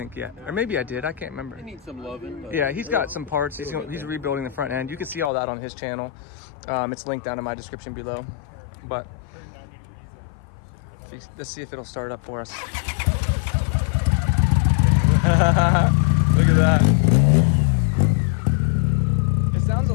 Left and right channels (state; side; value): drops out; right; at 5.3 s